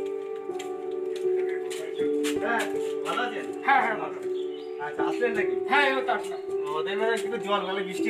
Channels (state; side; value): identical; both; correlation 1.00